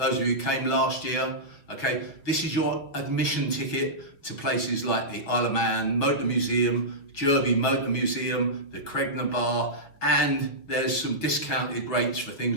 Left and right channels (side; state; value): right; late; 6.0 ms